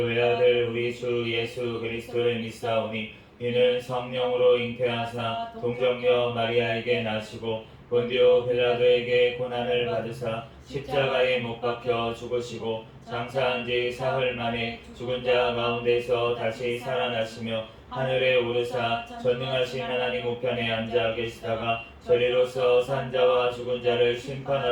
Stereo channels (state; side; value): identical; both; correlation 1.00